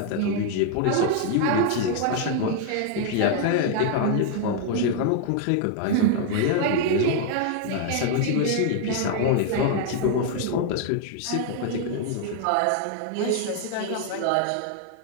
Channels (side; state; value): both; different; correlation 0.00